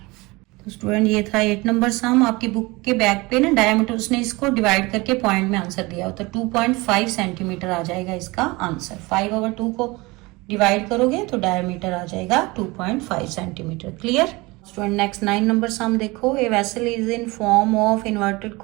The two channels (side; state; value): left; quieter; 23.4 dB